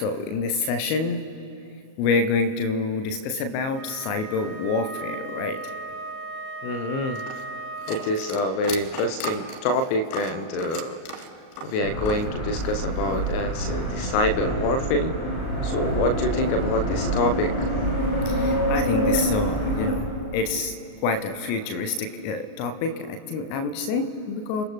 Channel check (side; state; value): right; late; 38 ms